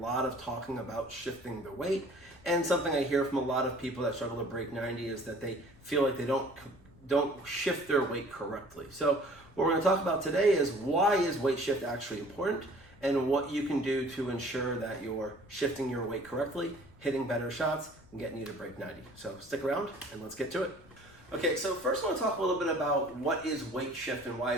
of talking about shifting the weight. And something I hear from a lot of people that struggle to break 90 is that they feel like they don't shift their weight correctly. So what we're going to talk about today is why is weight shift actually important, and what you can do to ensure that you're shifting your weight correctly, hitting better shots, and getting you to break 90. So stick around and let's get to it. Okay, so first I want to talk a little bit about what is weight shift and why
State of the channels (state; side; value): noise; left; rumble, 24 dB below the sound